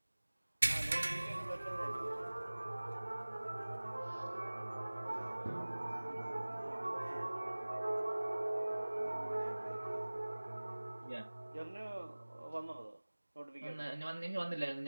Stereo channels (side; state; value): both; inverted; correlation -1.00